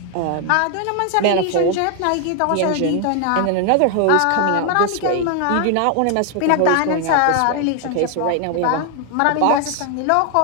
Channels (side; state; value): both; different; correlation 0.00